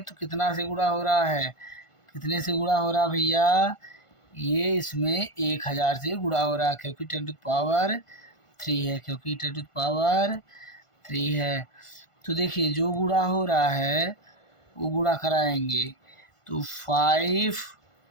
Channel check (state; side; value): late; right; 1.5 ms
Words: तो कितना से गुणा हो रहा है, कितने से गुणा हो रहा भैया, ये इसमें 1,000 से गुणा हो रहा है, क्योंकि 10⁻³ है, क्योंकि 10⁻³ है। तो देखिए जो गुणा हो रहा है वो गुणा कराएंगे, तो